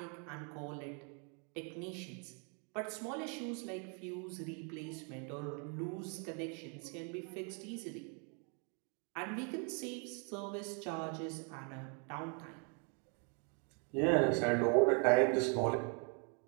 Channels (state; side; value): quieter; left; 38.1 dB